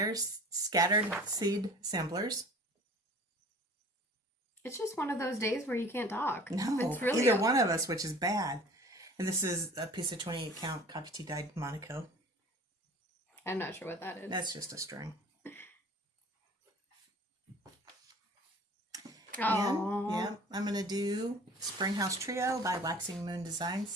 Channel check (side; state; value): both; normal; correlation 0.45